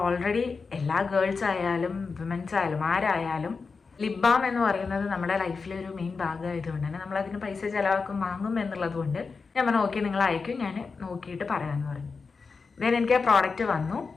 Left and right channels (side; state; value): right; quieter; 4.7 dB